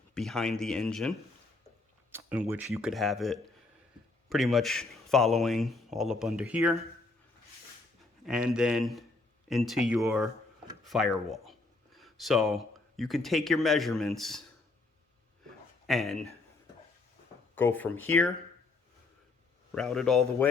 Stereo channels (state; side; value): quieter; right; 3.5 dB